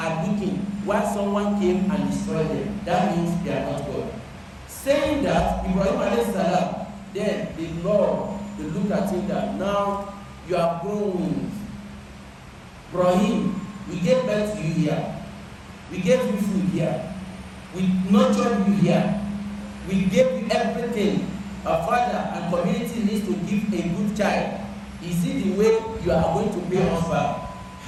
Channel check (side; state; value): both; identical; correlation 1.00